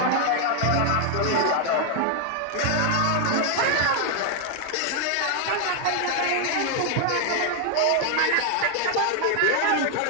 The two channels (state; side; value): different; both; correlation 0.00